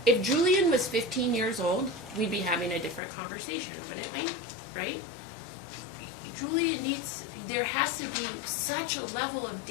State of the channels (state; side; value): drops out; right; at 3.0 s